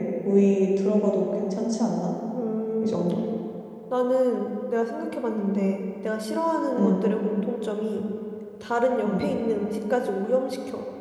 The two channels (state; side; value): identical; both; correlation 1.00